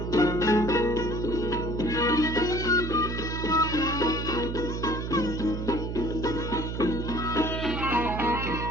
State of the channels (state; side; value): noise; right; hum, 4 dB below the sound